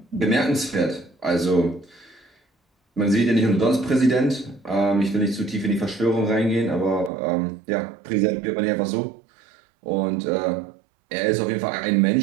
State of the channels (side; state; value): left; drops out; at 7.1 s